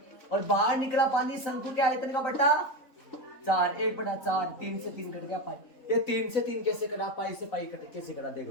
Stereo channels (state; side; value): late; right; 3.7 ms